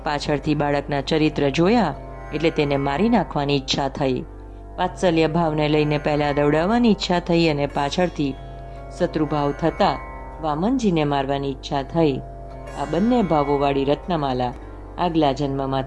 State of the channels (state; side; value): identical; both; correlation 1.00